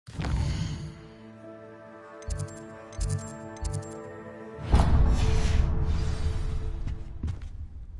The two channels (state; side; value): identical; both; correlation 1.00